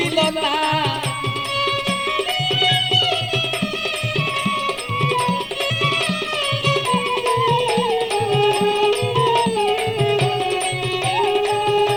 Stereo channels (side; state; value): both; identical; correlation 1.00